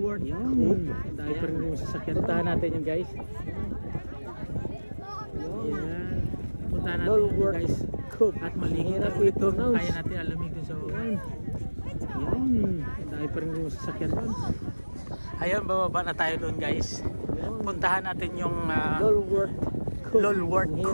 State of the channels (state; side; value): inverted; both; correlation -1.00